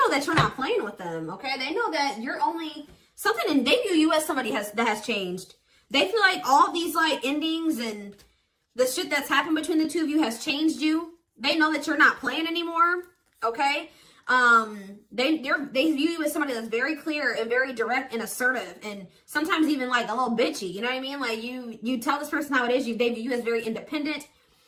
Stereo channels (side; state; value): both; identical; correlation 1.00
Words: that you're not playing with them, okay? They know that you're only something, and they view you as somebody that has changed. They feel like all these, like, endings and the shit that's happened between the two of you has changed you. They know that you're not playing anymore, okay? They view you as somebody that's very clear and very direct and assertive, and sometimes even, like, a little bitchy, you know what I mean? Like, you tell this person how it is. They view you as very independent.